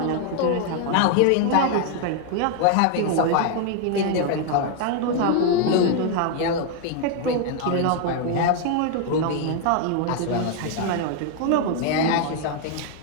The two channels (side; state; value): both; different; correlation 0.00